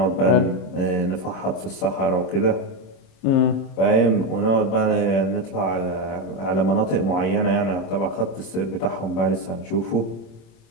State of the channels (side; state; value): right; late; 26 ms